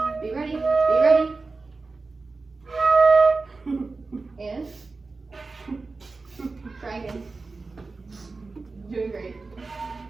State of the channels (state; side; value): quieter; left; 3.8 dB